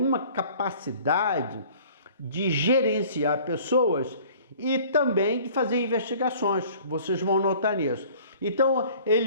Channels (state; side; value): inverted; both; correlation -0.50